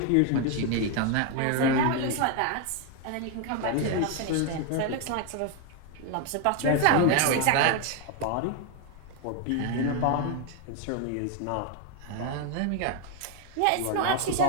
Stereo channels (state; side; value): different; both; correlation 0.01